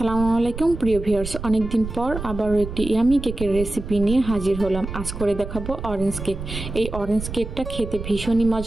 আলাইকুম প্রিয় ভিউয়ার্স, অনেকদিন পর আবারও একটি ইয়ামি কেকের রেসিপি নিয়ে হাজির হলাম। আজ করে দেখাবো অরেঞ্জ কেক। এই অরেঞ্জ কেকটা খেতে ভীষণই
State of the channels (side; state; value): right; noise; rumble, 8 dB below the sound